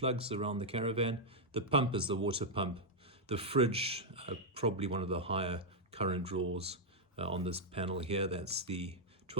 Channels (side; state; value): both; normal; correlation -0.03